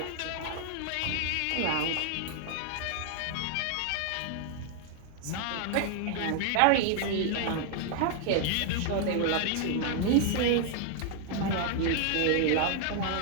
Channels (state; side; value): different; both; correlation 0.00